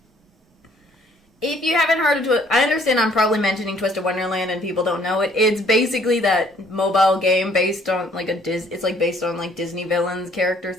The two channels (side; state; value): both; normal; correlation 0.61